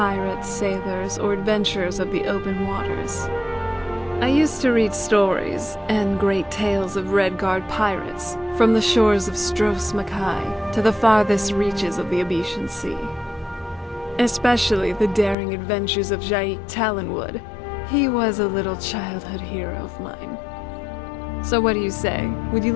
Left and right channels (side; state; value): right; drops out; at 15.4 s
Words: sailors, or adventurers of the open waters. I used to read stories and great tales of Redguard pirates, from the shores of Stros Mackay to the farthest reaches of the Abetian Sea. Especially the daring adventures of Jaik Talonwood. He was a little childhood hero of mine. So what do you say? Would you